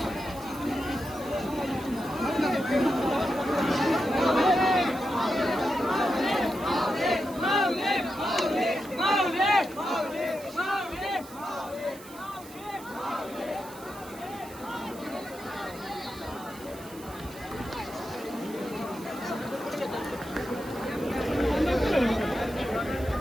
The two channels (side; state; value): right; noise; hiss, 18 dB below the sound